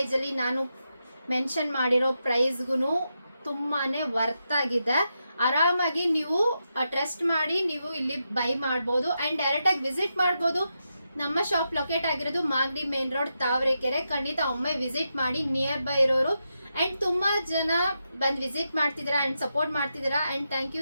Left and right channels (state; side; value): inverted; both; correlation -0.86